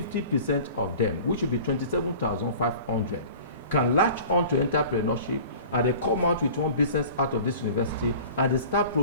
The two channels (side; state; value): both; inverted; correlation -0.42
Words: of them, which would be 27,500, can latch on to entrepreneurship, and they come out with one business out of this university, and they start